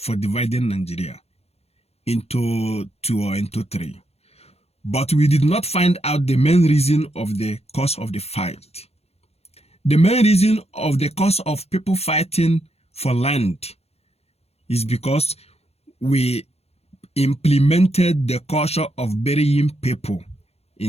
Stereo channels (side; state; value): right; late; 0.30 ms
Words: dividing Nigeria into two or into three. But we did not find out the main reason of the cause of the fight. The main reason of the cause of people fighting for land is because we implemented the culture of burying people